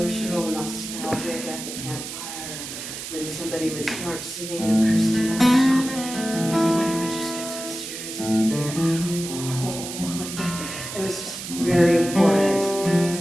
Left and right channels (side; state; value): right; noise; hiss, 8 dB below the sound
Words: nostalgic at the campfire when somebody would start singing a Christy Moore song, and everybody would just get so serious and they're oh, like the